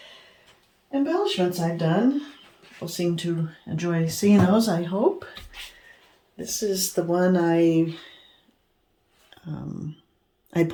embellishments I've done. People seem to enjoy seeing those, I hope. This is the one I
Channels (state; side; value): identical; both; correlation 1.00